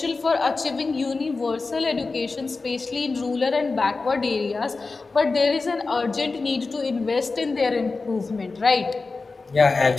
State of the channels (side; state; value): right; quieter; 3.9 dB